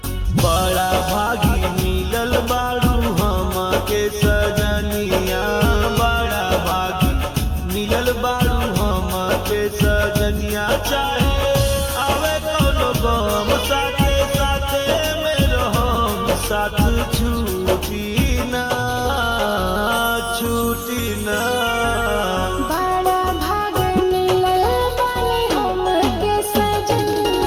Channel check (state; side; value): identical; both; correlation 1.00